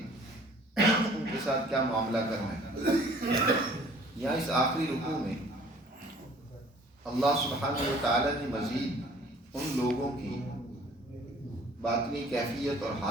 ان کے ساتھ کیا معاملہ کرنا ہے. یہاں اس آخری رکوع میں اللہ سبحانہ و تعالی نے مزید ان لوگوں کی باطنی کیفیت اور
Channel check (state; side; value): normal; both; correlation 0.53